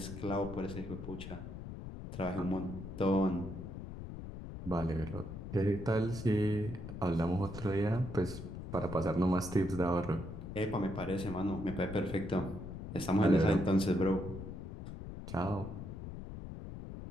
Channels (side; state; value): left; noise; rumble, 9 dB below the sound